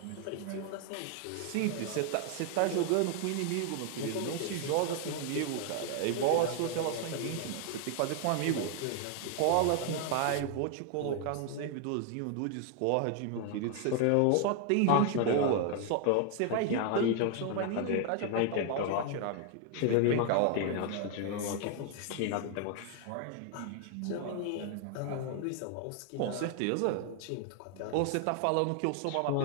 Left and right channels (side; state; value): both; different; correlation 0.00